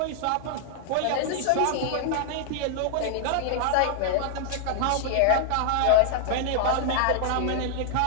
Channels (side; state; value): both; different; correlation 0.00